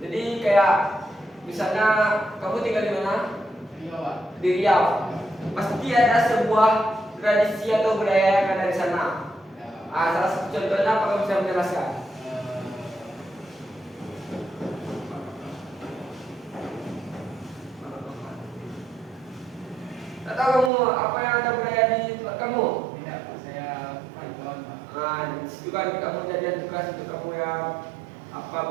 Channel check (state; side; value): drops out; left; at 20.7 s